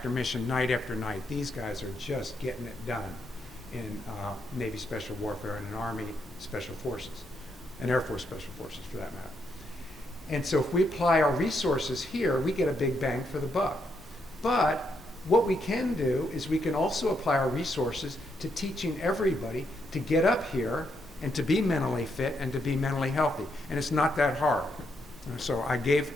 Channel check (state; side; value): normal; both; correlation 0.78